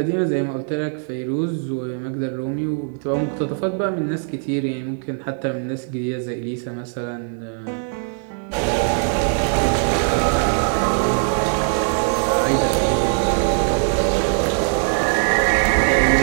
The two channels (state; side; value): silent; left; 60 dB below the other